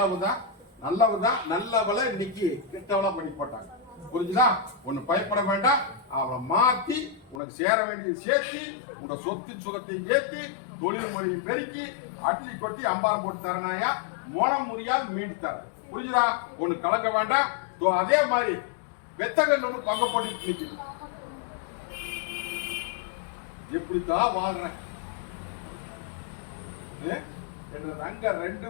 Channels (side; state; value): right; drops out; at 7.4 s